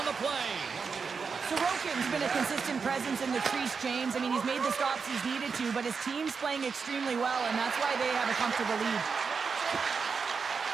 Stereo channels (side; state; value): left; quieter; 5.4 dB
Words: the play. Sorokin's been a consistent presence in the crease, James. I mean, he's made the stops he's needed to, but his team's playing extremely well, and that's why they have a comfortable lead.